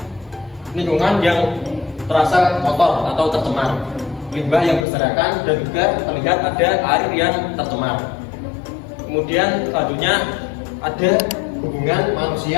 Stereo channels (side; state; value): right; drops out; at 4.9 s